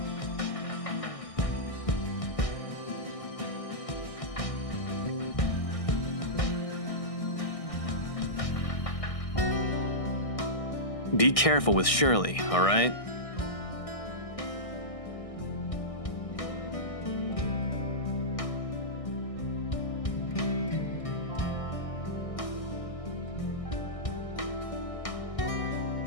Be careful with Shirley, all right?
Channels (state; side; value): late; right; 1.6 ms